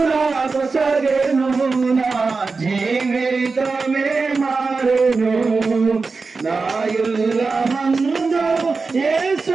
నాకు సగెను, నా జీవితమే మారెను. నాయుల మందు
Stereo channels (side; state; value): left; quieter; 4.3 dB